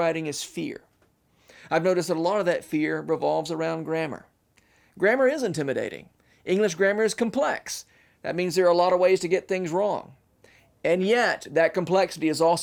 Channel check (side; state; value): both; identical; correlation 1.00